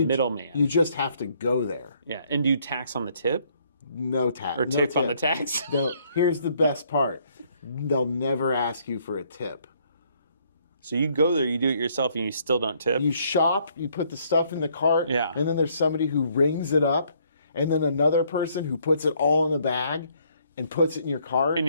middleman. You just have to go there. Yeah. And do you tax on the tip? No tax. Or tip on the tax? No, here's the best part. They'll never ask you for a tip. So you go there, you do it yourself, and you still don't tip? You shop, you put the stuff in the cart, Yeah. and then there's somebody who rings it up, and then another person who puts it all in a bag and puts it in your cart. And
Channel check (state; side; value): inverted; both; correlation -0.67